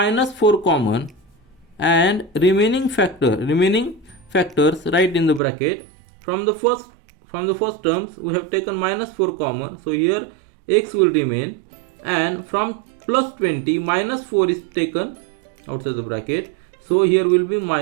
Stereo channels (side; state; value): left; drops out; at 5.4 s